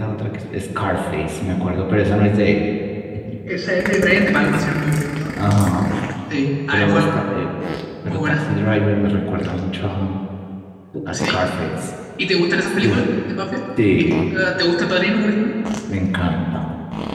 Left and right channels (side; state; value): both; identical; correlation 1.00